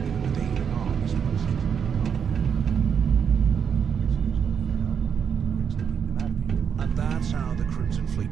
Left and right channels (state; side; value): quieter; left; 7.3 dB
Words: And that's how the Crimson